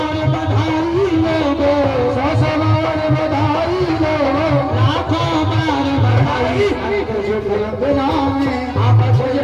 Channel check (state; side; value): identical; both; correlation 1.00